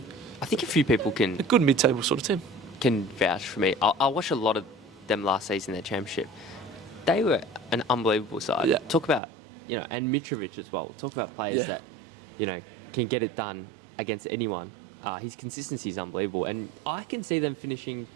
I think a few people a can good mid-table sort of team? vouch for me. I watched a lot of them last season, their championship. They were an unbelievable side. Yeah. Talk about, and Mitrovic as well. Talk about players Yeah. that, can get it done against anyone. His consistency is unbelievable. And I can see them finishing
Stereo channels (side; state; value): left; drops out; at 9.2 s